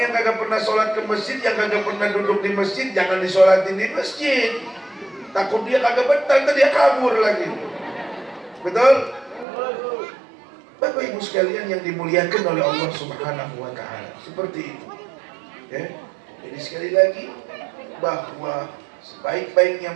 kagak pernah sholat ke masjid, yang kagak pernah duduk di masjid, jangan disolatin di masjid. Takut dia kagak betah, dia kabur lagi. Betul? Bapak Ibu sekalian yang dimuliakan oleh Allah Subhanahu wa Ta'ala, seperti itu. Ya. Jadi sekali lagi, bahwa sebaik-baiknya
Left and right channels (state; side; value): drops out; left; at 9.5 s